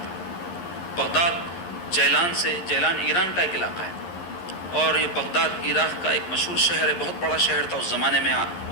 ہوں. بغداد جیلان ایران کا ایک علاقہ ہے اور یہ بغداد عراق کا ایک مشہور شہر ہے، بہت بڑا شہر تھا اس زمانے میں.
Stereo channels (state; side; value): late; right; 11 ms